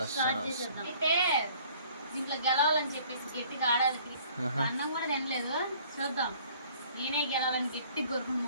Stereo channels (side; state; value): both; inverted; correlation -0.55